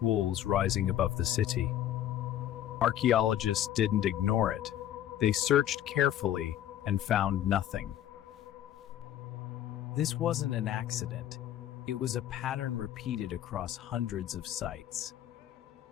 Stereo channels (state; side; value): quieter; right; 11.6 dB